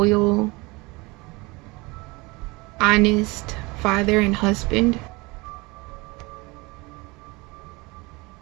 honest father and husband.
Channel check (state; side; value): quieter; left; 24.5 dB